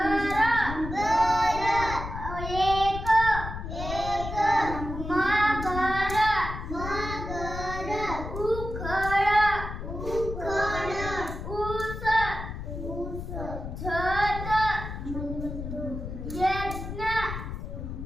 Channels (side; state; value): left; noise; rumble, 7 dB below the sound